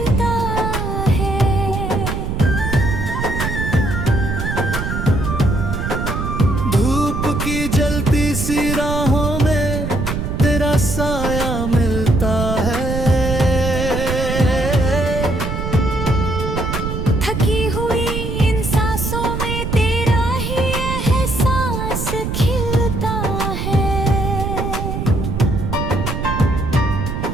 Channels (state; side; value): noise; right; rumble, 3 dB below the sound